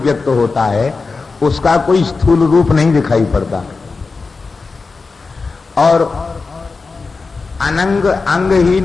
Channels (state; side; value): quieter; right; 4.2 dB